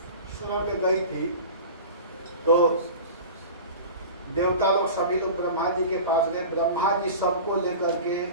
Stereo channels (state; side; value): inverted; both; correlation -0.35